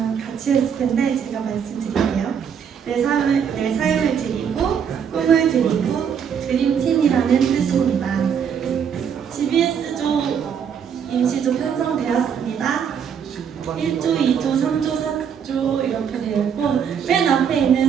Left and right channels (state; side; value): quieter; left; 7.6 dB